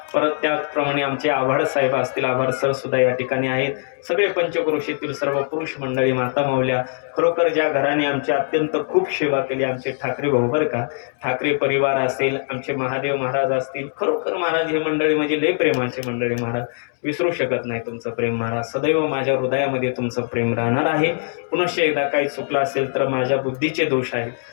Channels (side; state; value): right; silent; 65 dB below the other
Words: परत त्याप्रमाणे आमचे आभार साहेब असतील, आभार सर सुद्धा या ठिकाणी आहेत. सगळे पंचक्रोशीतील सर्व पुरुष मंडळी, माता माऊल्या, खरोखर ज्या घराने आमची अत्यंत खूप सेवा केली, आमचे ठाकरे भाऊ बरं का, ठाकरे परिवार असेल, आमचे महादेव महाराज असतील, खरोखर महाराज हे मंडळी म्हणजे लय प्रेमाचे मंडळी. महाराज विसरू शकत नाही तुमचं प्रेम महाराज, सदैव माझ्या हृदयामध्ये तुमचं प्रेम राहणार आहे. पुनश्च एकदा काही चुकलं असेल तर माझ्या बुद्धीचे दोष आहेत